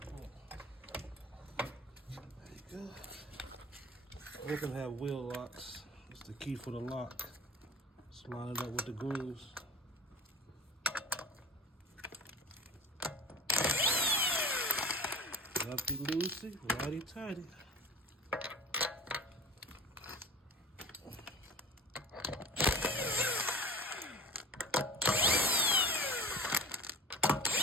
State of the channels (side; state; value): both; normal; correlation 0.37